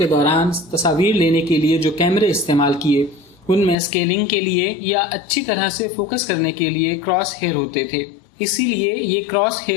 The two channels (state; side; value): drops out; right; at 3.8 s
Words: دوران تصاویر لینے کے لیے جو کیمرے استعمال کیے ان میں اسکیلنگ کے لیے یا اچھی طرح سے فوکس کرنے کے لیے کراس ہیئر ہوتے تھے، اسی لیے یہ کراس